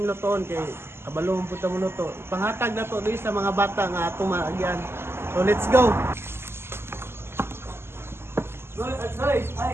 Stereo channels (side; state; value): left; late; 0.12 ms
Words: lutoon kay kabalong punta mo luto. Panghatag na to sa mga bata nga ato maagyan. So let's go.